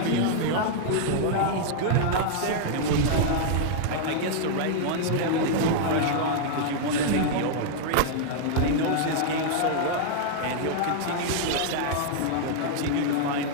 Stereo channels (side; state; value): both; different; correlation -0.01